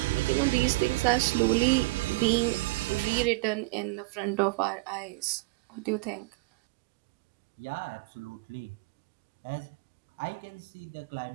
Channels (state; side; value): quieter; left; 23.6 dB